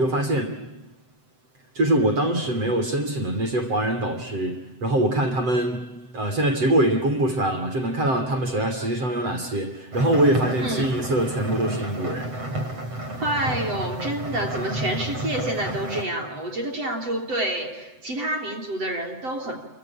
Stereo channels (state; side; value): late; left; 7.8 ms